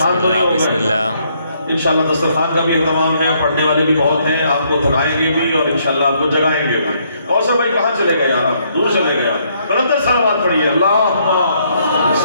تو نہیں ہو بسم گئے؟ اللہ۔ انشاءاللہ دسترخوان کا بھی اہتمام ہے، پڑھنے والے بھی بہت ہیں، آپ کو تھکائیں گے بھی اور انشاءاللہ آپ کو جگائیں گے بھی۔ اور سب بھائی کہاں چلے گئے یار، آپ دور چلے گئے؟ بلندر صلوات پڑھیے، اللہم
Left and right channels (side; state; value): both; inverted; correlation -0.71